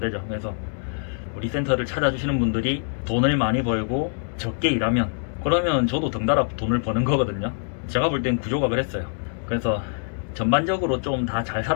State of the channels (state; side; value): silent; right; 62 dB below the other